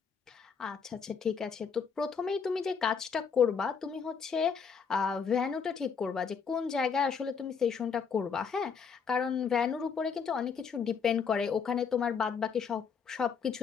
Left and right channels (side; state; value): right; quieter; 6.2 dB